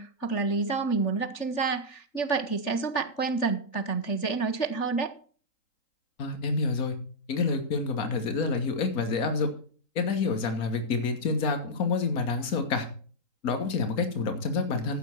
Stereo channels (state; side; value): late; right; 4.3 ms